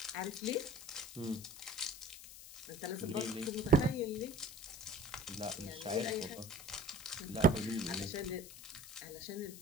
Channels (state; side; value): noise; left; hiss, 14 dB below the sound